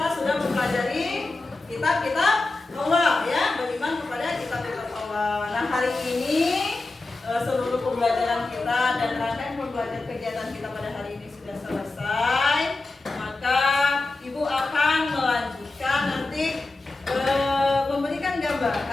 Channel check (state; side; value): quieter; right; 3.3 dB